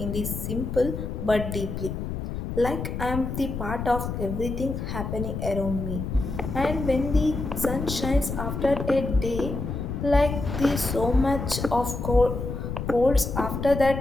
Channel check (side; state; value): left; noise; rumble, 5 dB below the sound